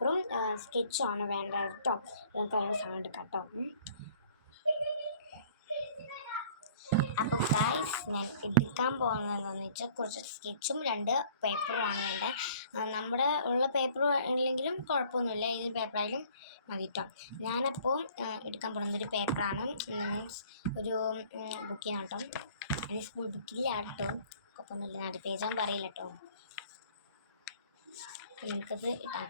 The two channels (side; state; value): both; inverted; correlation -0.53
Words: സ്കെച്ചുമാണ് വേണ്ടത് കേട്ടോ. നമുക്ക് അതിനുള്ള സാധനം എടുക്കാം കേട്ടോ. അപ്പോൾ ഗൈസ്, ഞാൻ എടുക്കാൻ പോകുന്നത് എന്താണെന്ന് വെച്ചാൽ കുറച്ച് സ്കെച്ചും 2 പേപ്പറുമാണ് വേണ്ടത്. നമ്മുടെ ഉള്ള പേപ്പർ ഇല്ലെങ്കിലും കുഴപ്പമൊന്നുമില്ല, ഏത് പേപ്പറായാലും മതി കേട്ടോ. ഞാനപ്പോൾ എടുക്കാൻ പോകുന്നത് ഒരു പേപ്പറാണ്, മീൻസ് ഒരു ബുക്കിനാണ് കേട്ടോ. അതിന് സ്കൂൾ ബുക്കില്ല കേട്ടോ, കുഴപ്പമൊന്നുമില്ല. 4 പേജാകുമ്പോൾ പറയില്ല കേട്ടോ. അപ്പോൾ നമുക്കത്